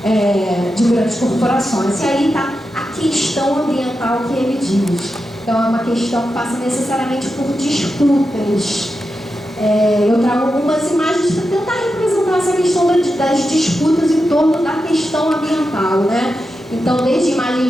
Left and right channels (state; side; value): normal; both; correlation 0.89